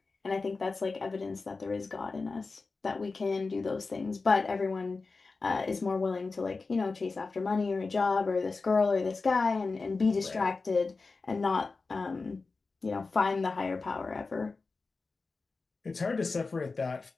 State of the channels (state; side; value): quieter; right; 4.0 dB